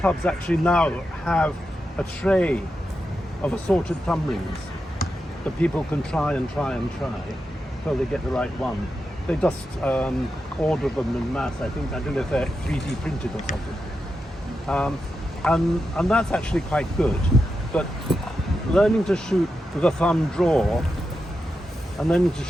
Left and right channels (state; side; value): normal; both; correlation 0.88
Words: actually now have a tray of assorted thumb rings that people can try until they get the right one. They just order them in mass. I don't know if they're 3D printed or something. And that's actually quite good. But learning to shoot with a thumb draw and learning to